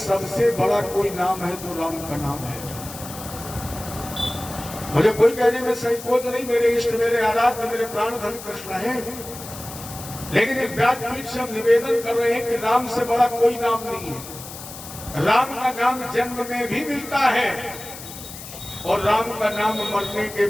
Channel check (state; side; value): noise; left; hiss, 13 dB below the sound